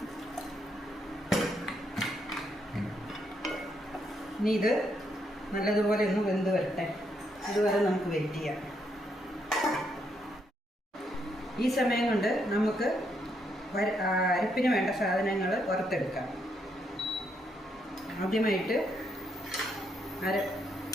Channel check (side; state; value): both; normal; correlation 0.76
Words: ഇനി ഇത് നല്ലതുപോലെ ഒന്ന് വെന്ത് വരട്ടെ. അതുവരെ നമുക്ക് വെയിറ്റ് ചെയ്യാം. ഈ സമയം കൊണ്ട് നമുക്ക് അരപ്പിന് വേണ്ട സാധനങ്ങൾ വറുത്തെടുക്കാം. ആദ്യമായിട്ട്